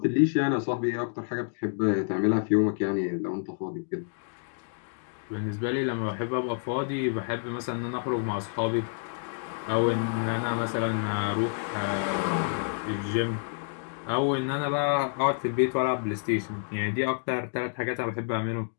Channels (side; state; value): right; silent; digital silence